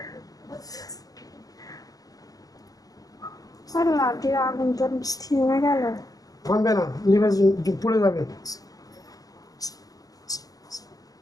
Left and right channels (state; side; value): late; right; 0.18 ms